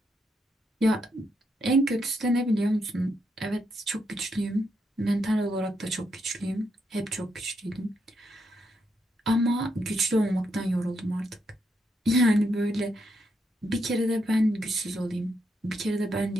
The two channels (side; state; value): both; normal; correlation 0.79